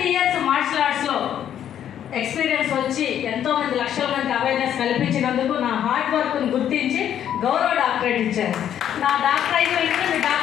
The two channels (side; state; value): right; quieter; 10.1 dB